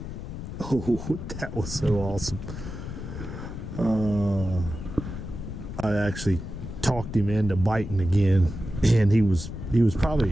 Oh, that was so awesome. I actually talked him into biting again, and he was probably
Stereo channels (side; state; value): left; noise; rumble, 8 dB below the sound